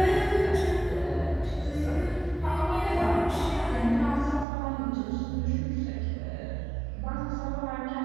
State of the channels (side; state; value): left; drops out; at 4.5 s